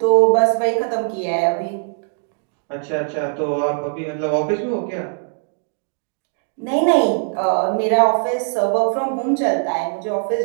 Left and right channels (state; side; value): silent; left; digital silence